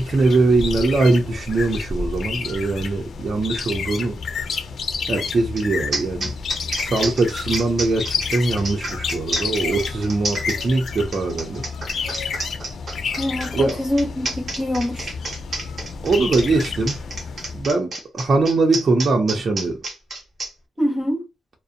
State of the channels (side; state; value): both; normal; correlation 0.85